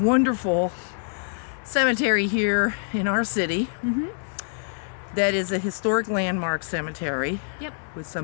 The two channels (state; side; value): silent; right; 62 dB below the other